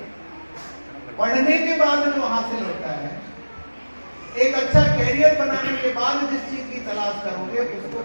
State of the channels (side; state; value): both; inverted; correlation -1.00